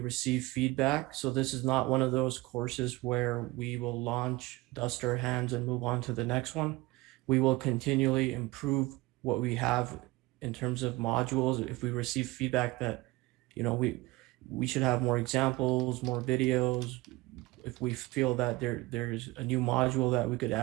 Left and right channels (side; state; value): left; quieter; 20.9 dB